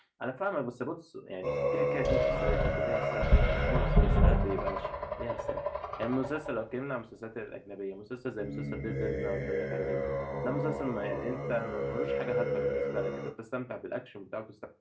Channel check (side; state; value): both; identical; correlation 1.00